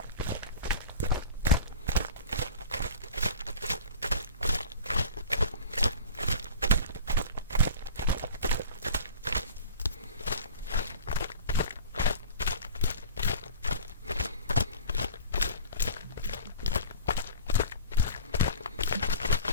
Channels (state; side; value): inverted; both; correlation -0.38